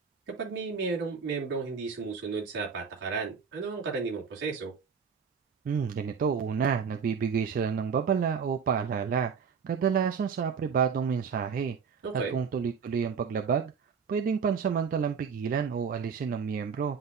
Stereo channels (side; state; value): left; quieter; 6.2 dB